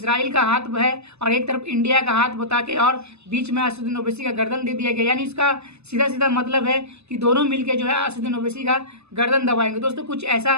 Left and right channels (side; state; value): left; late; 0.80 ms